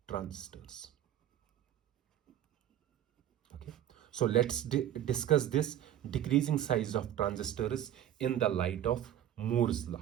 transistors. Okay, so let's discuss this decreasing size of transistors in the light of Moore's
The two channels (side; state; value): left; quieter; 11.3 dB